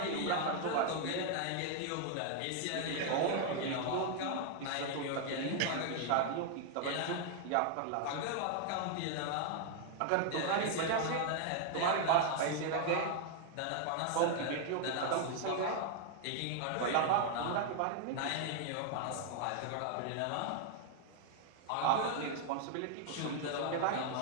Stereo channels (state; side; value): different; both; correlation 0.00